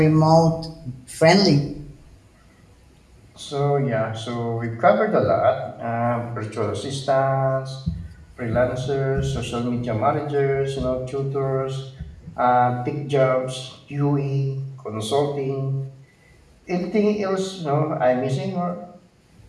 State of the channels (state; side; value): identical; both; correlation 1.00